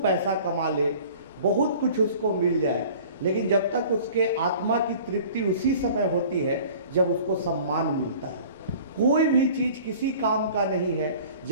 पैसा कमा ले, बहुत कुछ उसको मिल जाए, लेकिन जब तक उसके आत्मा की तृप्ति उसी समय होती है जब उसको सम्मान मिलता है। कोई भी चीज़ किसी काम का नहीं है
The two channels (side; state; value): both; inverted; correlation -0.46